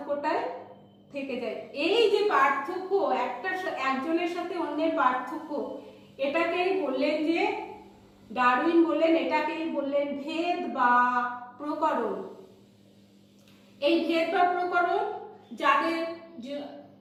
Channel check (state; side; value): identical; both; correlation 1.00